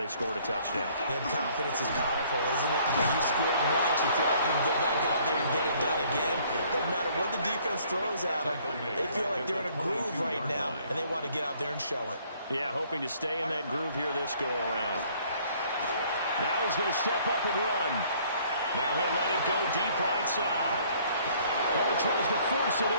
scored a touchdown. And confidence is powerful, isn't it? You scored once, you feel like you can go back out there and get it done again. Doesn't matter what the defense throws at them. They feel like they're in a groove right now, and they want to get out there and show it. Yeah, hoping to stay in that groove here this go-around. Now he's going to step up and run. Now he'll let it go deep right side. Oh, he tries to force it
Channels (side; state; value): both; inverted; correlation -0.60